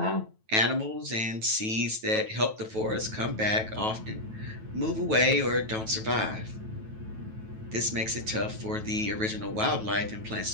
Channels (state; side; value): late; left; 9.2 ms